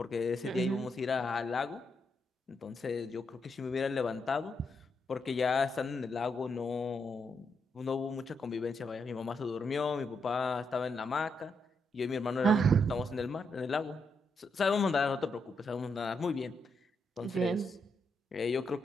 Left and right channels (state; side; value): normal; both; correlation 0.80